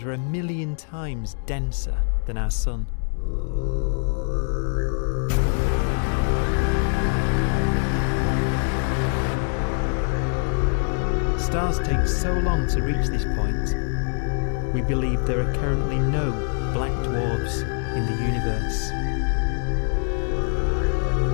are 1,000,000 times denser than our Sun. Stars take so long to reach this point, we believe there are currently no black dwarfs in the universe.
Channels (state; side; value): silent; right; 61 dB below the other